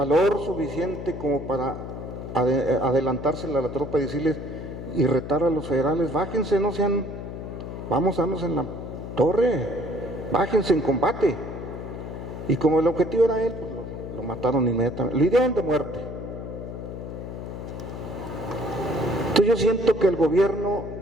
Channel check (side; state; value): left; noise; hum, 8 dB below the sound